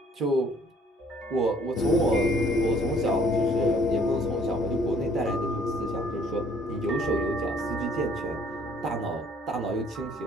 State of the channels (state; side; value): normal; both; correlation 0.60